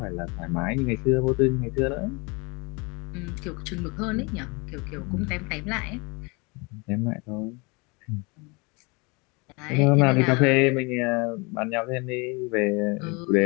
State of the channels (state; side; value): quieter; right; 28.7 dB